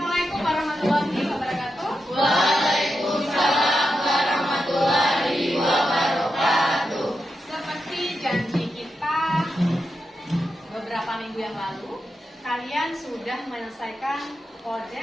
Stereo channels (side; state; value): both; normal; correlation 0.87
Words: Assalamualaikum warahmatullahi wabarakatuh. Waalaikumsalam warahmatullahi wabarakatuh. Seperti janji kita beberapa minggu yang lalu, kalian sudah menyelesaikan